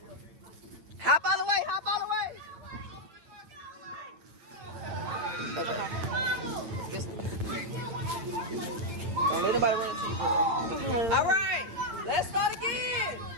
Hop all the way, hop all the way. Okay. Don't let nobody run into you, girl. All right, let's start again.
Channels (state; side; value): late; left; 8.8 ms